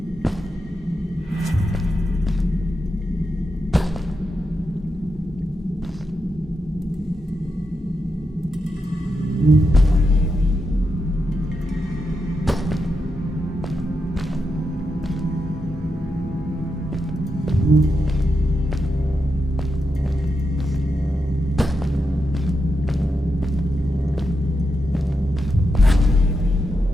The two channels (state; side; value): normal; both; correlation 0.86